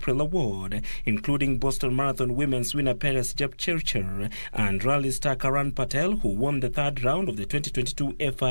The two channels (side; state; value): both; inverted; correlation -1.00